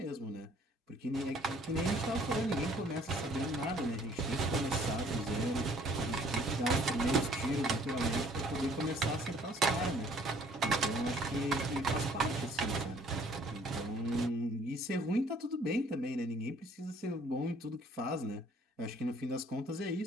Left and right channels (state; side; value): normal; both; correlation 0.58